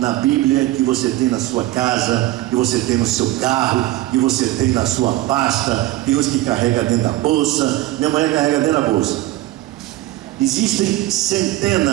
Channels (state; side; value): quieter; left; 16.4 dB